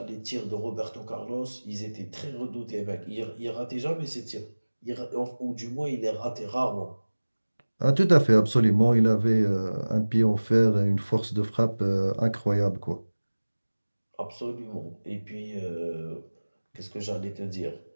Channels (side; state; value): both; inverted; correlation -1.00